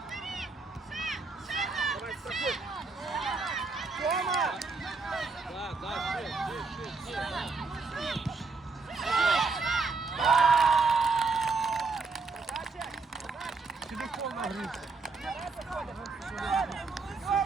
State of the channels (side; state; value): left; quieter; 4.2 dB